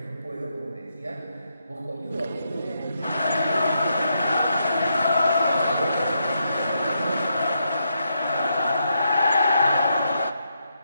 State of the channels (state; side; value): inverted; both; correlation -0.80